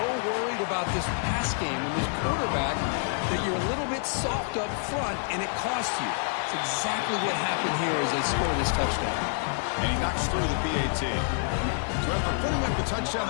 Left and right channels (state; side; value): silent; right; digital silence